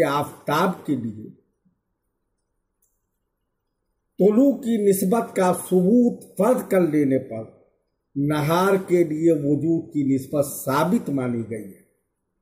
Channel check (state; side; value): identical; both; correlation 1.00